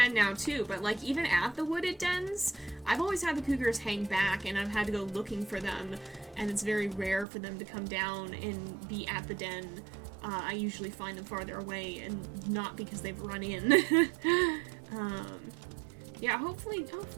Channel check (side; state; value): left; drops out; at 7.2 s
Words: now, too, but, like, even at the wooded dens, I've always had the cougars hang back, and I've had to go looking for them, and it's very rare for them to come down and be at the den. I usually find them farther away, and not because they've run in. Yeah, hopefully